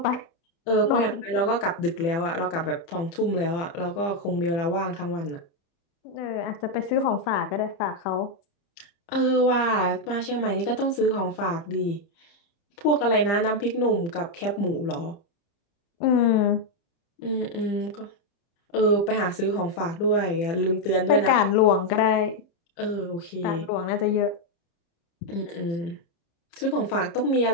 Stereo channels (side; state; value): right; late; 30 ms